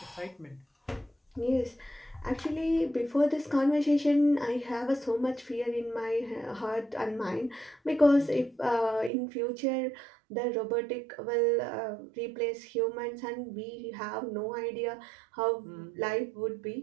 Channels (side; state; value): left; drops out; at 9.1 s